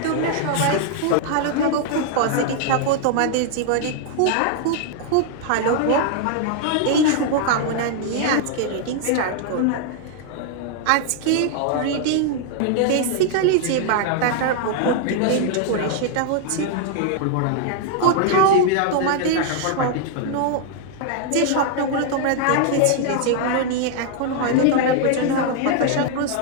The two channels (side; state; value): both; different; correlation 0.00